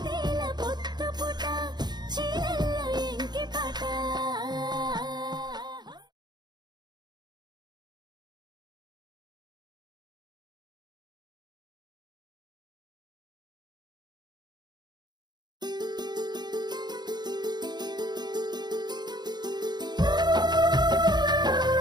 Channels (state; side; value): late; left; 0.21 ms